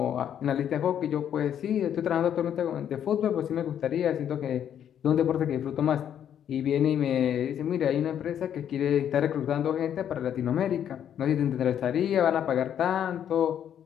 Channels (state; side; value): quieter; right; 9.5 dB